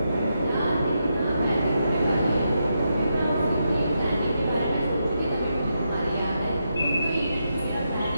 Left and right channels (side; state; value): both; inverted; correlation -0.84